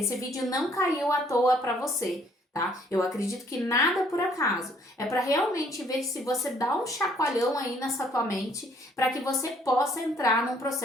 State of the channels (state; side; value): normal; both; correlation 0.63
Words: não caiu à toa para você. Tá? Eu acredito que nada por acaso. É para realmente ver se você dá um chacoalhão aí nessa tua mente para que você possa entrar num